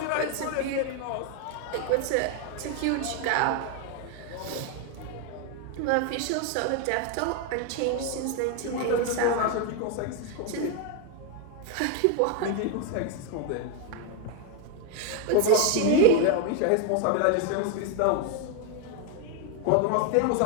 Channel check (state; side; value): different; both; correlation 0.01